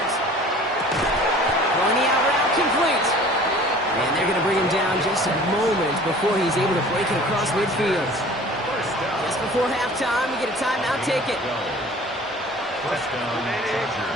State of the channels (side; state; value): both; normal; correlation 0.46